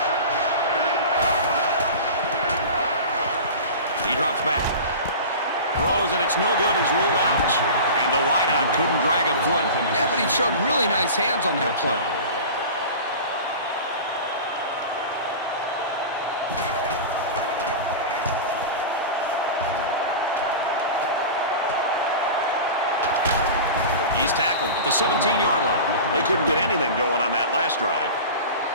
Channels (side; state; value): both; inverted; correlation -0.32